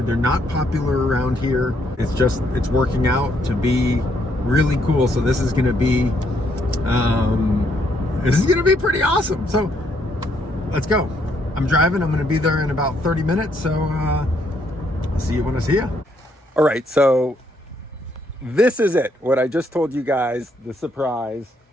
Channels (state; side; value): normal; both; correlation 0.72